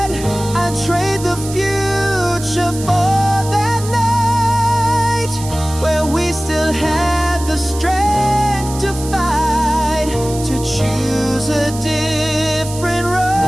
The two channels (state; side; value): noise; right; hiss, 13 dB below the sound